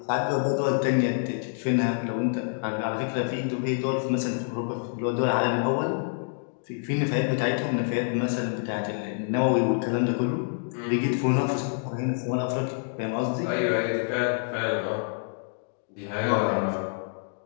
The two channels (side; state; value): right; silent; digital silence